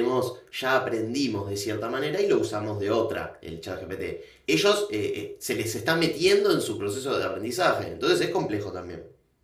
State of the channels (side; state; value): both; identical; correlation 1.00